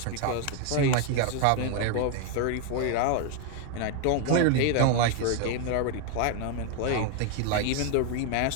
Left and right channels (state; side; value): different; both; correlation 0.01